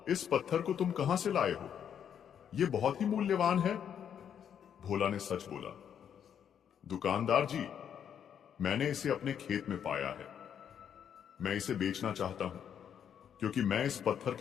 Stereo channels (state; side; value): quieter; right; 8.6 dB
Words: इस पत्थर को तुम कहां से लाए हो? यह बहुत ही मूल्यवान है। भोला ने सच बोला, दुकानदार जी, मैंने इसे अपने खेत में पाया है। मैं इसे बेचना चाहता हूं, क्योंकि मैं इस पत्थर